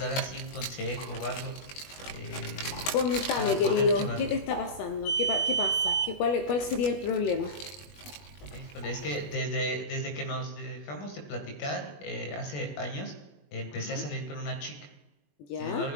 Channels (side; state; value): right; late; 21 ms